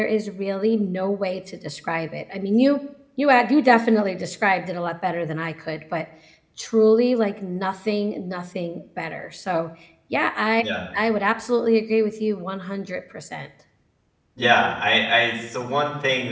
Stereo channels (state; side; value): identical; both; correlation 1.00